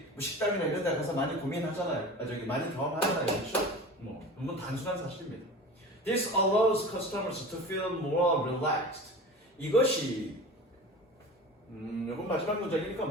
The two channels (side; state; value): both; normal; correlation 0.35